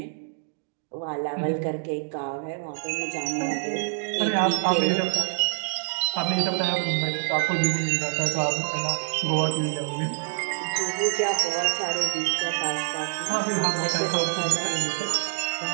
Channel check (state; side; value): silent; left; 61 dB below the other